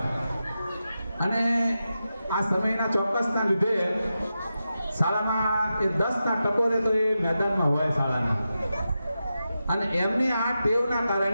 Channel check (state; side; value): inverted; both; correlation -0.90